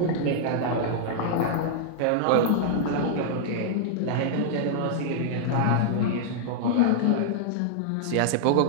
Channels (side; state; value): both; different; correlation -0.01